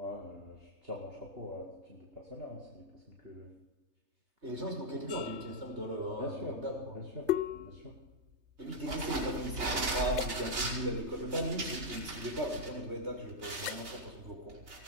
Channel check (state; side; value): late; left; 3.3 ms